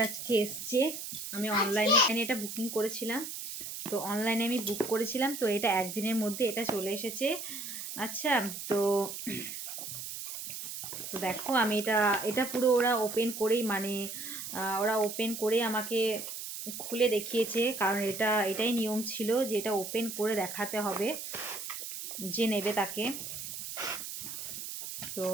আজকে এসছে। আমি অনলাইনে এটা বুকিং করেছিলাম, তো অনলাইনে আমি বুক করেছিলাম, তো এটা একদিনের মধ্যে এটা চলে এসেছে। আচ্ছা, তো তো দেখো আমি এটা পুরো ওরা ওপেন করেই মানে ওরা ওপেন করে আমাকে খুলে দেখিয়েছে, কারণ এটাই নিয়ম ছিল যে এটা ওপেন করে দেখাতে হবে যে নেবে তাকে। তো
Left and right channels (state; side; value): noise; right; hiss, 7 dB below the sound